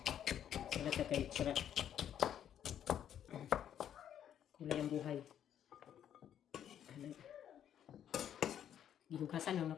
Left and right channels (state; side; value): quieter; right; 9.9 dB